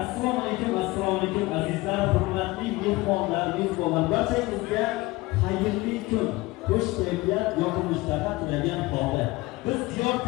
Assalomu alaykum azizlar, hurmatli mehmonlar, mezbonlar, barchangizga xayrli kun, xush kayfiyat, yoqimli ishtaha tilagan holda biz Diyor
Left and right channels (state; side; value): quieter; right; 20.9 dB